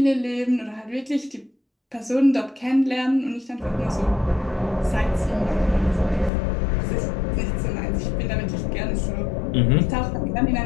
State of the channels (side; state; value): right; drops out; at 6.3 s